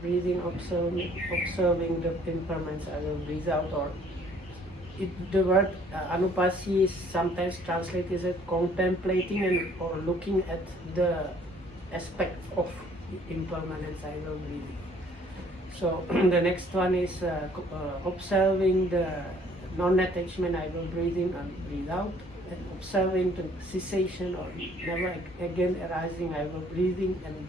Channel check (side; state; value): both; normal; correlation 0.59